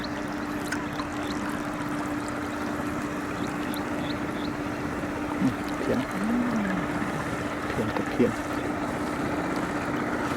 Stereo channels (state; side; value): identical; both; correlation 1.00